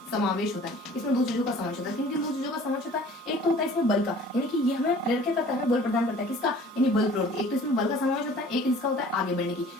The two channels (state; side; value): normal; both; correlation 0.49